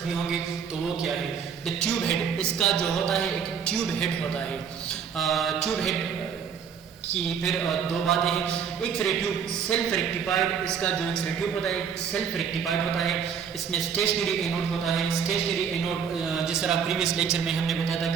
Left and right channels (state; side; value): quieter; left; 7.1 dB